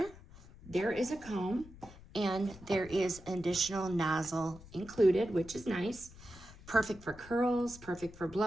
there is a comb, and there is an additional nozzle included, which is nice. Perfect for curls, perfect for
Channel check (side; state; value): left; noise; rumble, 19 dB below the sound